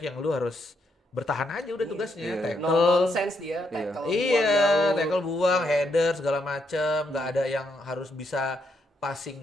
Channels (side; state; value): both; normal; correlation 0.78